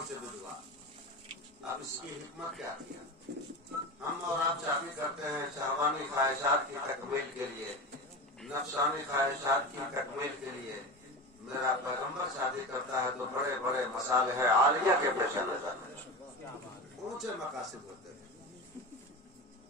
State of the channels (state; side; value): normal; both; correlation 0.26